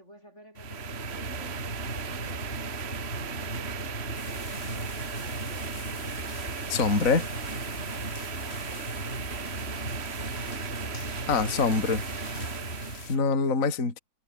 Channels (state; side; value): late; right; 3.5 ms